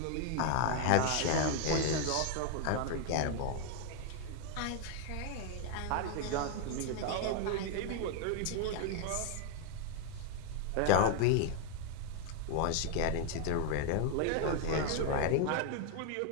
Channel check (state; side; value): different; both; correlation 0.00